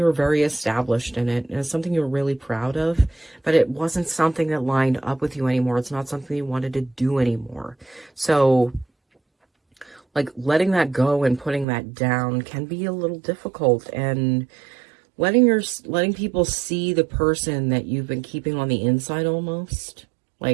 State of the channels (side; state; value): left; drops out; at 11.7 s